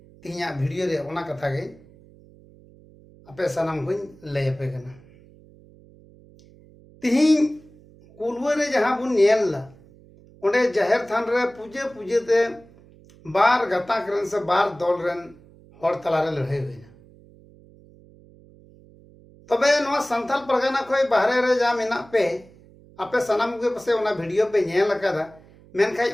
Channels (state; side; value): noise; right; hum, 25 dB below the sound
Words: तिहिया वीडियो रे ओना कथा गे आपे सनम को लय पे कना तिहिन कुलवा रे जहां बुन नेल ला ओंडे जाहिर थान रे पूजे पूजे ते बार गता करन से बार दल रेन हर तला रे लड़ाई होइना तबे नवा संथाल परगना खोय बाहरे रे जा मेना पे आपे सनम के पसे ओना वीडियो पे नेल लकादा मेनखाय